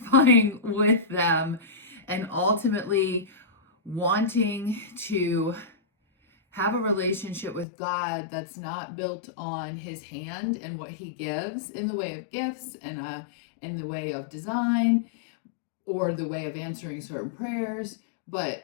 with them, and ultimately wanting to have a relationship with God that's not built on his hand and what he gives in the way of gifts and in the way of design or the way of answering certain prayers,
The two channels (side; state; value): right; drops out; at 7.7 s